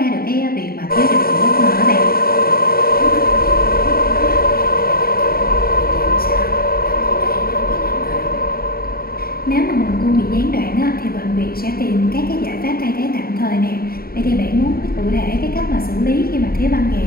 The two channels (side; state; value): right; late; 0.44 ms